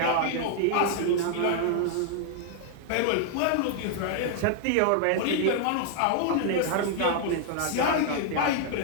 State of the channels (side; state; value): both; different; correlation 0.00